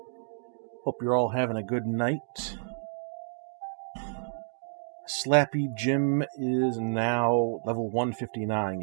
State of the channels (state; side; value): silent; left; digital silence